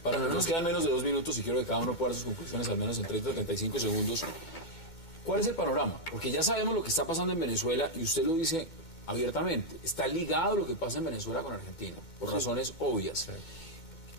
nos quedan menos de 2 minutos y quiero que cada uno pueda dar sus conclusiones al menos en 30 o 35 segundos. ¿Cuál es el panorama? Porque ya sabemos lo que está pasando en Venezuela y usted lo dice abiertamente. Está ligado lo que pasa en Venezuela con Argentina, por razones obvias. Sí.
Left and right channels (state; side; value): late; right; 2.2 ms